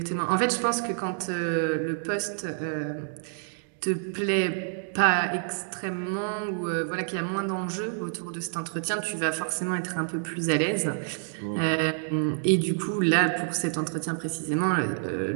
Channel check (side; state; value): left; silent; digital silence